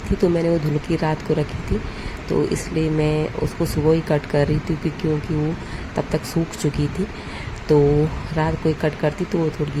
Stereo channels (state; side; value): identical; both; correlation 1.00